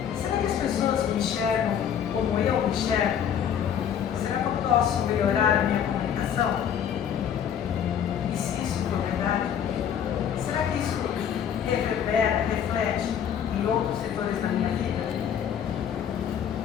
Será que as pessoas me enxergam como eu me enxergo? Será que eu posso melhorar a minha comunicação? E se isso for verdade, será que isso reverbera, reflete em outros setores da minha vida?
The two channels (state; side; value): quieter; right; 8.7 dB